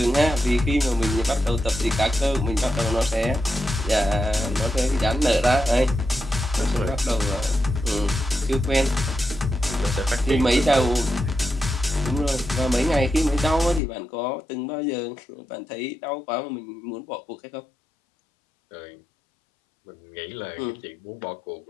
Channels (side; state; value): right; drops out; at 13.8 s